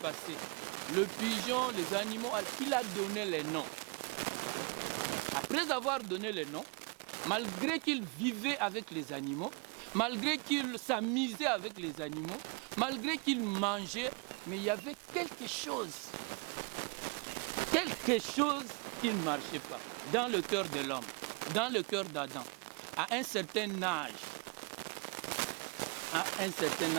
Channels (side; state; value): left; quieter; 33.9 dB